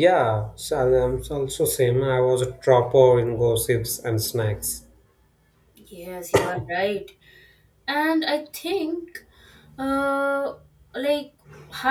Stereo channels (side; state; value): both; identical; correlation 1.00